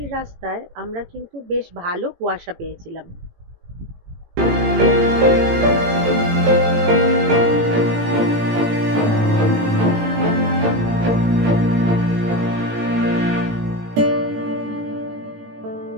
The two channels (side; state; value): left; late; 18 ms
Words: রাস্তায় আমরা কিন্তু বেশ ভালো কুয়াশা পেয়েছিলাম।